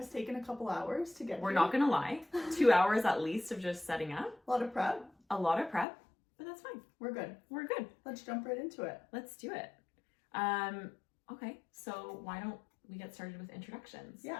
taken a couple hours to get We're here. not going to lie. 2 hours at least of just setting up. A lot of prep. But that's fine. We're good. We're good. Let's jump right into it. Let's do it. Okay. So why don't we get started with introductions?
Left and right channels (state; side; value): drops out; right; at 5.9 s